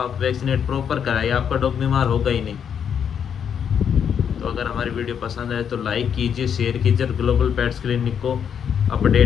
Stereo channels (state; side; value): quieter; right; 7.9 dB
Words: आप वैक्सीनेट प्रॉपर कराइए, आपका डॉग बीमार होगा ही नहीं। तो अगर हमारी वीडियो पसंद आए तो लाइक कीजिए, शेयर कीजिए, और ग्लोबल पेट्स क्लिनिक को